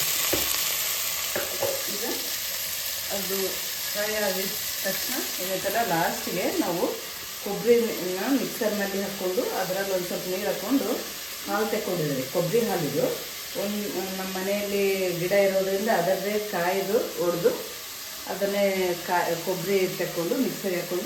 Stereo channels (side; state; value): both; identical; correlation 1.00